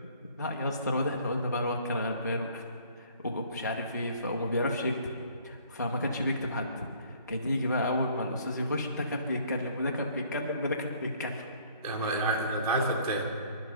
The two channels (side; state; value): both; inverted; correlation -0.56